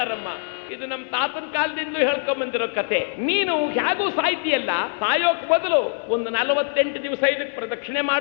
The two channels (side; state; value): right; silent; 63 dB below the other